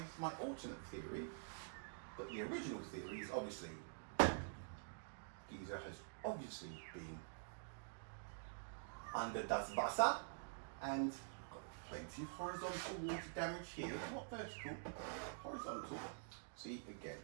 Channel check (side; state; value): left; silent; digital silence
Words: alternate theory. But the original theory is obviously Giza has obviously been under das Wasser and got plenty of horizontal water damage here. Not vertical, horizontal. See, again,